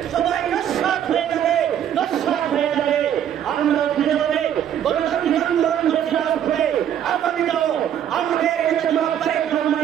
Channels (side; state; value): left; quieter; 9.9 dB